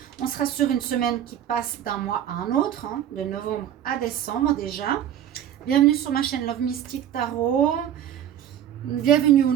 On sera sur une semaine qui passe d'un mois à un autre, de novembre à décembre déjà. Bienvenue sur ma chaîne Love Mystic Tarot. Bienvenue aux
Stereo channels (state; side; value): quieter; left; 10.4 dB